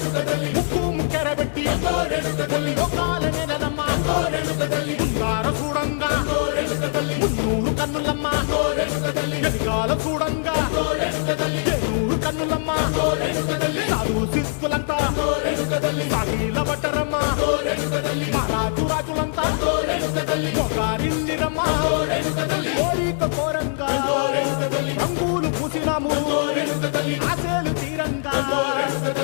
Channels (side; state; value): right; silent; 60 dB below the other